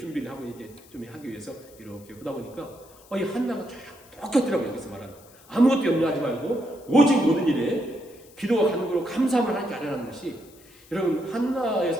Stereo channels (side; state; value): left; noise; hiss, 25 dB below the sound